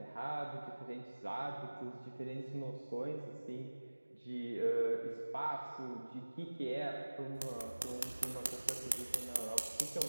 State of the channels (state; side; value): inverted; both; correlation -1.00